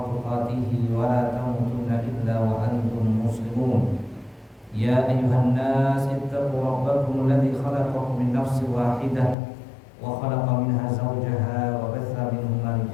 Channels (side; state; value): right; drops out; at 9.3 s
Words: tuqatih wa la tamutunna illa wa antum muslimun. Ya ayyuhan nas ittaqu rabbakum alladzi khalaqakum min nafsin wahidah wa khalaqa minha zawjaha wa batha minhuma